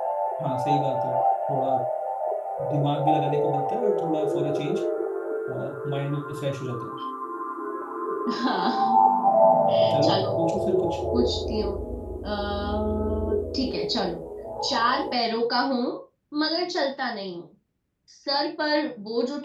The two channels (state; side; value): identical; both; correlation 1.00